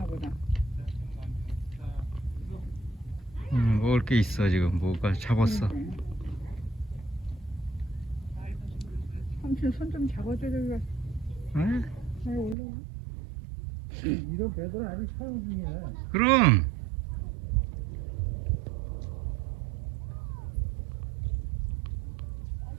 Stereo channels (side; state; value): left; drops out; at 12.6 s